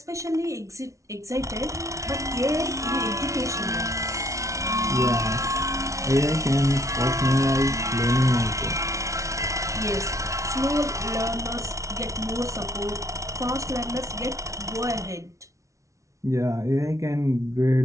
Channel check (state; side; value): late; left; 0.15 ms